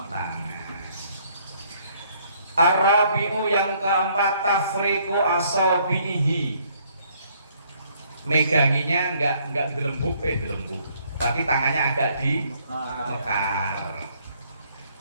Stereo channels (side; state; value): both; inverted; correlation -0.65